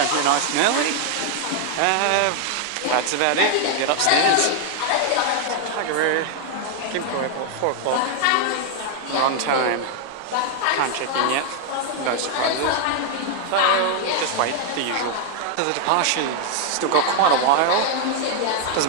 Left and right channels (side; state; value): both; different; correlation 0.00